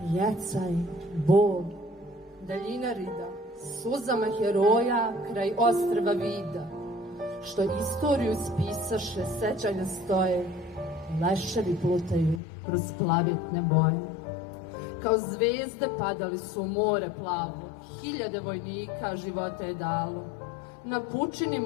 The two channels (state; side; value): drops out; right; at 12.4 s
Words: jecaj, bol, daljina rida, suzama heroja kraj ostrva vida, što istoriju spisaše, sećanja stoje, leševi plutaju kroz plavetne boje. Kao zvezde padali su u more plavo, hiljade vojnika života je dalo. Na pučini